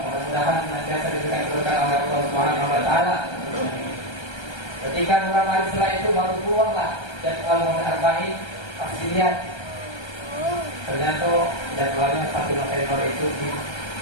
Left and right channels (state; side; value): late; right; 1.3 ms